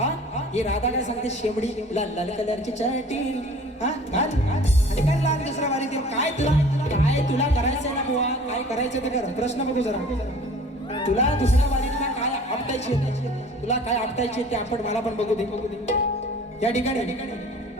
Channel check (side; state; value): both; normal; correlation 0.47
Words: ही राधा काय सांगते शेमडी लाल लाल कलरची चटी हा आणि काय लाल दुसरा वारी ते काय तुला करायचंय ना बुवा काय करायचं ते कर प्रश्न बघू जरा तुला दुसऱ्या वारीतला काय आपटायची तुला काय आपटायची ते आपण मला पण बघू दे या ठिकाणी